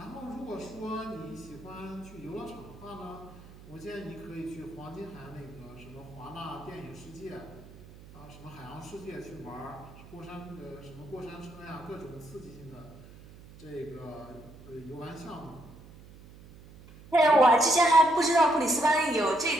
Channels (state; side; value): noise; right; hum, 19 dB below the sound